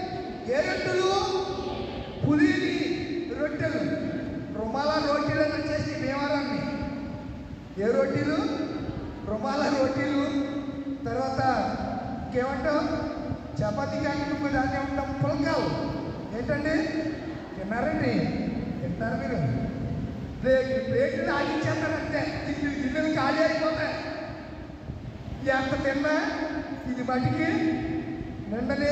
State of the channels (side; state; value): both; identical; correlation 1.00